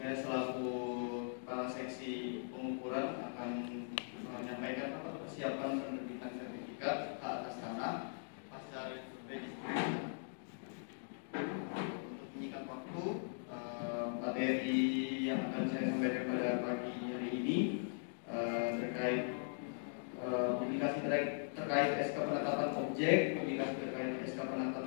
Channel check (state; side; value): silent; right; digital silence